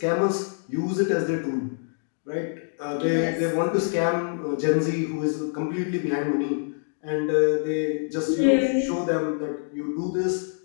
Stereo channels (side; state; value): right; silent; 61 dB below the other